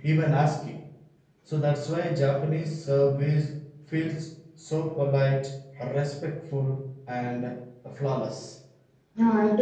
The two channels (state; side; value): identical; both; correlation 1.00